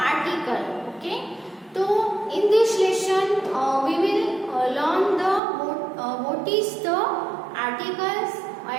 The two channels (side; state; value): left; drops out; at 5.4 s